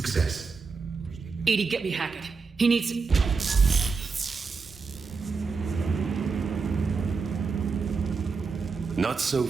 EDI, get me Hackett. He needs... Not so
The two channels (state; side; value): quieter; left; 4.8 dB